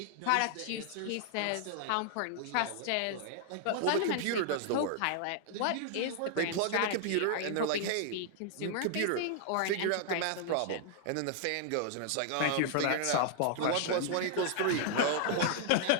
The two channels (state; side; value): different; both; correlation 0.00